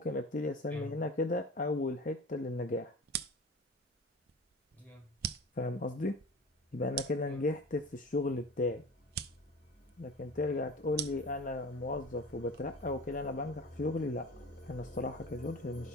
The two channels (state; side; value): normal; both; correlation 0.36